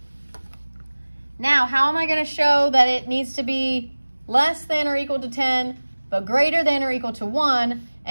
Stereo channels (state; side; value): inverted; both; correlation -1.00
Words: Now, how am I going to show that it needs to be less than or equal to 10, but greater than or equal to 1,